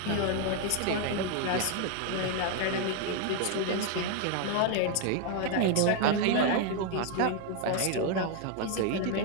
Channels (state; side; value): different; both; correlation 0.00